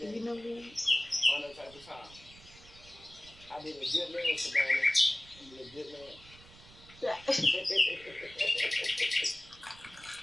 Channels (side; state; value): right; noise; rumble, 21 dB below the sound